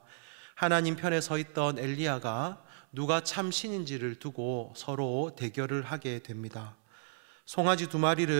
하나님 편에 서 있던 엘리야가 누가 참 신인지를 두고 서로 대결을 하게 됩니다. 송아지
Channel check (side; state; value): left; silent; 55 dB below the other